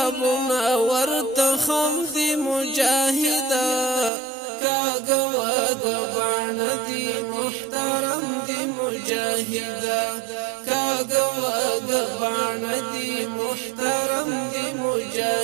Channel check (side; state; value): left; drops out; at 4.1 s